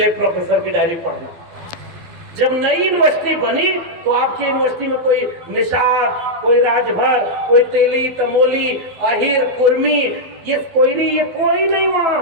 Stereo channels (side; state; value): left; late; 12 ms